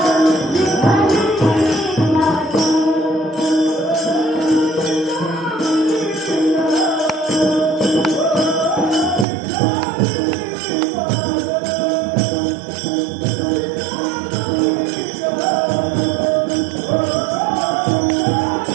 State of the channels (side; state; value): left; drops out; at 9.2 s